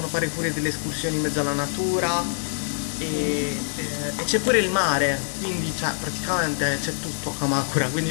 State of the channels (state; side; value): silent; right; digital silence